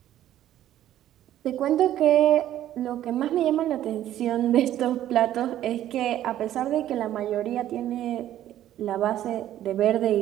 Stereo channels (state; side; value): quieter; left; 12.4 dB